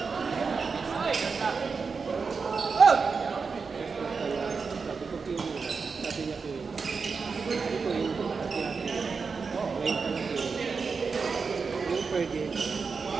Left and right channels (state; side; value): quieter; left; 5.0 dB